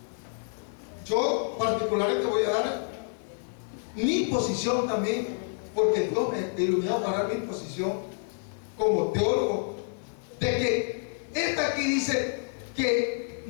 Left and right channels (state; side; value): silent; right; digital silence